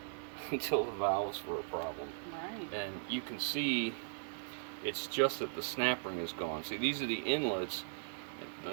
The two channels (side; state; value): left; silent; 52 dB below the other